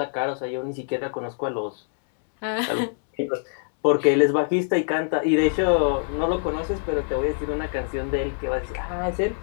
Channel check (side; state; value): right; silent; 62 dB below the other